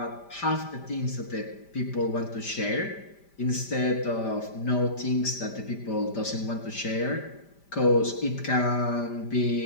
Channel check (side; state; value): right; late; 5.1 ms